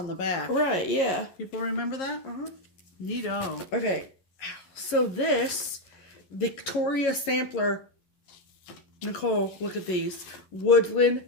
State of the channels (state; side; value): late; right; 11 ms